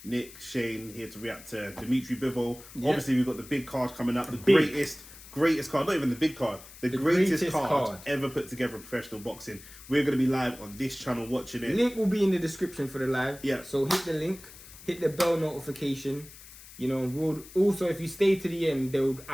Nick, Shane here to react to Dmitry Bivol. Yep. Obviously, we've got the big card coming up. The greatest card, not even the big card. The greatest card ever put together in professional boxing. We're going to be live on this channel watching it. Link will be in the description for the live. Yeah. So hit the link, hit the bell notification. You know, we'll also, if you stay to the end,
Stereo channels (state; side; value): noise; left; hiss, 18 dB below the sound